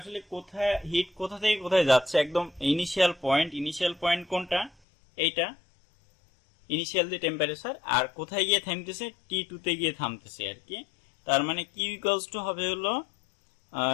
কোথায় হিট কোথা থেকে কোথায় যাচ্ছে, একদম ইনিশিয়াল পয়েন্ট কোনটা, এইটা ইনিশিয়াল যে টেম্পারেচার, আর কোথায় গিয়ে থামতেছে, T2 তে গিয়ে থামতেছে আর কি। তার মানে কিউ ইকুয়ালস টু হবে হলো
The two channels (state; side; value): drops out; right; at 4.7 s